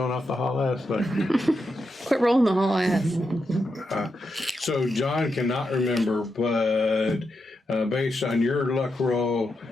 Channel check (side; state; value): both; normal; correlation 0.85